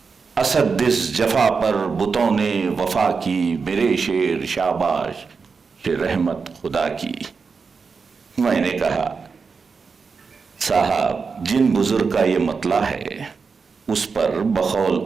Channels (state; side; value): quieter; left; 5.1 dB